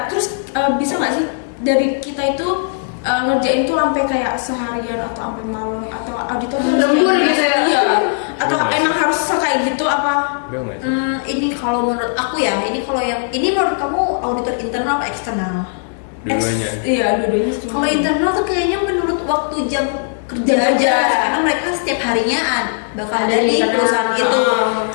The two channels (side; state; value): right; silent; 67 dB below the other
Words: terus bisa nggak sih dari kita itu ngerjain tuh sampai kayak seharian atau sampai malam, atau auditor tuh harus Lembur kayak gitu ya? Iya. Atau Iya, emang harus kayak gitu apa? Enggak nggak sih? Ini kalau menurut aku ya, ini menurut kamu auditor internal atau eksternal? Dua-duanya. Iya, dua-duanya. Kalau internal tuh kayaknya menurut waktu jam kerja Jam aja, kerja. karena mereka setiap harinya bakal Ada ada di di internal. perusahaan itu.